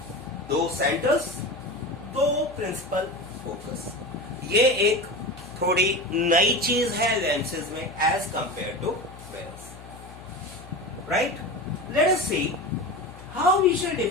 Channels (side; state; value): left; noise; hum, 17 dB below the sound